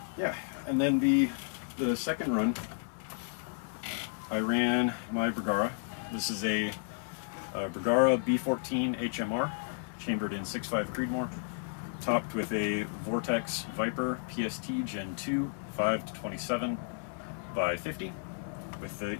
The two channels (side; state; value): right; silent; 56 dB below the other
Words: yeah, and then the second run, I ran my Bergara. This is a Bergara B14 HMR, chambered in 6.5 Creedmoor. topped with a Vortex Viper PST Gen 2 5-27 by 50 with the